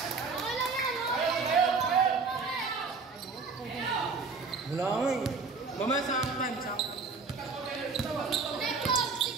Wala ko eh. Mamaya sa time.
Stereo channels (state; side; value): quieter; left; 4.5 dB